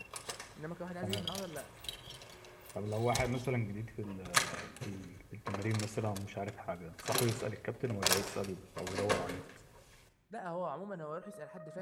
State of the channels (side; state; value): both; identical; correlation 1.00